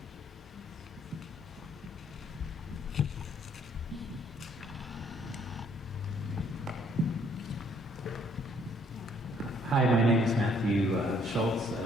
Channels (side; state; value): both; normal; correlation 0.65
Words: Hi, my name is Matthew Schultz. I